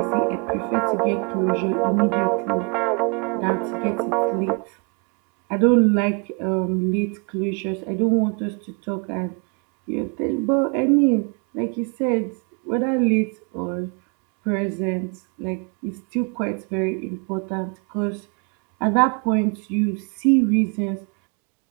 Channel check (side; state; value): left; quieter; 34.8 dB